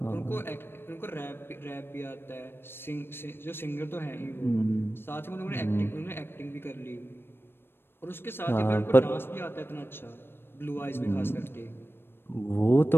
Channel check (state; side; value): late; right; 0.11 ms